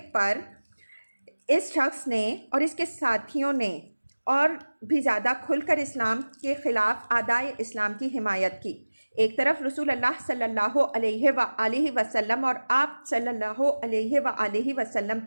پر اس شخص نے اور اس کے ساتھیوں نے اور بھی زیادہ کھل کر اسلام کے خلاف اعدائے اسلام کی حمایت کی۔ ایک طرف رسول اللہ صلی اللہ علیہ وآلہ وسلم اور آپ صلی اللہ علیہ وآلہ وسلم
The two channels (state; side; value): inverted; both; correlation -1.00